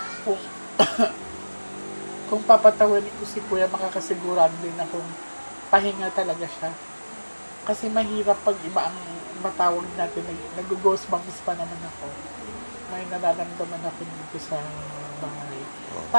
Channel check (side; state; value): both; inverted; correlation -1.00